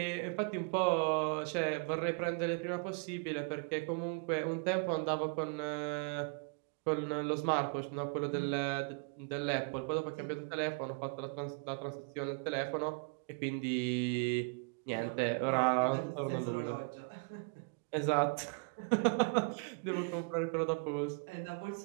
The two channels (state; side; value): quieter; left; 35.0 dB